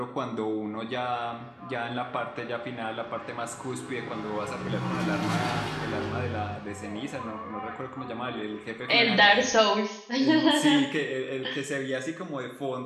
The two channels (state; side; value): identical; both; correlation 1.00